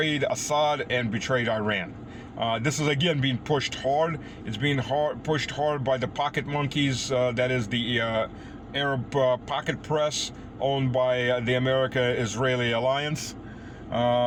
Assad and betrayed Iran. This is again being pushed hard. It's being pushed hard by the pocket monkeys. That is the Arab pocket press owned by the America-Israeli alliance.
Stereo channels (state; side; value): identical; both; correlation 1.00